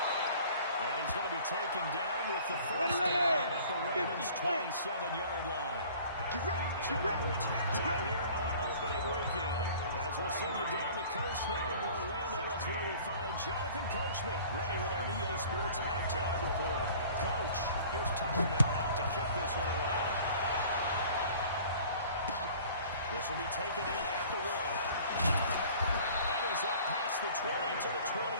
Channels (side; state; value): both; inverted; correlation -0.48